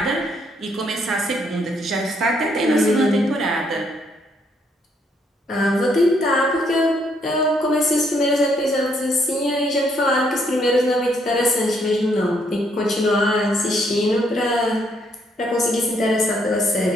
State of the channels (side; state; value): both; normal; correlation 0.71